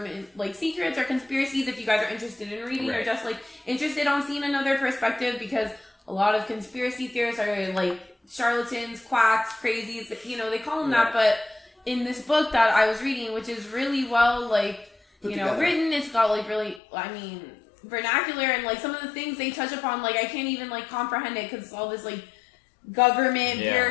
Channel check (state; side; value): drops out; right; at 16.8 s